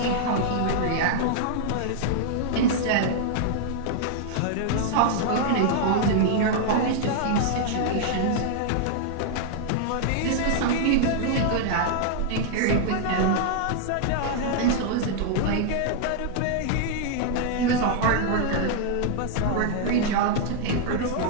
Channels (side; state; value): both; different; correlation -0.01